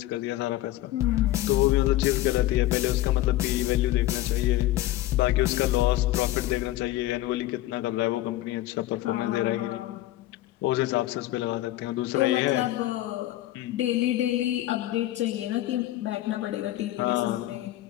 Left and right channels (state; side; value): quieter; right; 15.3 dB